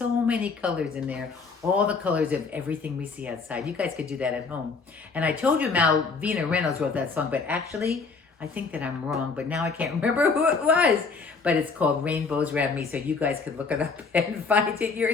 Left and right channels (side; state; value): right; quieter; 4.7 dB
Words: many colors in there, all the colors of everything we see outside. You guys could do that at home. And I told you Malvina Reynolds wrote that song, but actually, I think that I'm wrong, but now I can't remember who it was. But it's called Rainbows Around Me, so you guys could look it up and find it